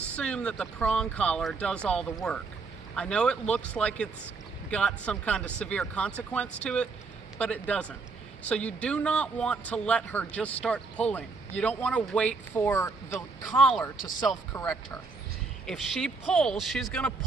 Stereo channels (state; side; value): quieter; left; 4.2 dB